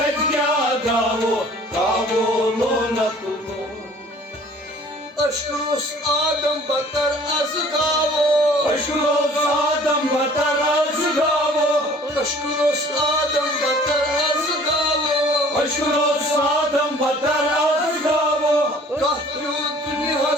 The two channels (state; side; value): normal; both; correlation 0.51